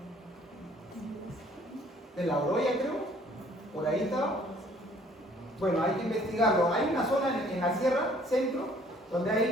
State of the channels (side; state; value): both; normal; correlation 0.58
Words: De la Oroya, creo. Por ahí estaba. Bueno, hay que investigarlo. Hay una zona en la sierra, centro, donde